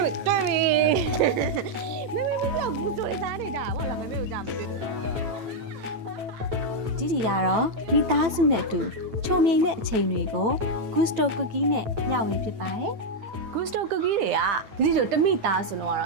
မေကြောက်ဘူးဆိုရစားနေကြတာဟုတ်လားမေကိုကြားမတွေ့ဒီကတော့မိသားစုနဲ့အတူချုံမြိန်တဲ့အချိန်တွေကို Gusto Cookie နဲ့ညဝေဖြစ်ပါတယ်Gusto Cookie တွေကဒီလိုတမိသားဆိုတော့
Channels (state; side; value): late; left; 9.0 ms